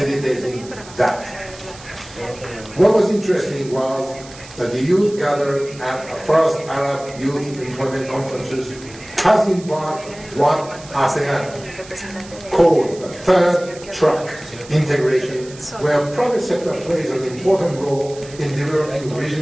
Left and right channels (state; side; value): noise; right; hiss, 19 dB below the sound